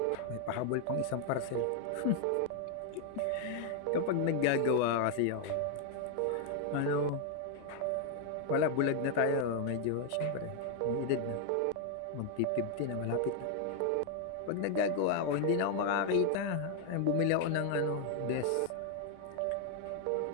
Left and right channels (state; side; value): different; both; correlation 0.00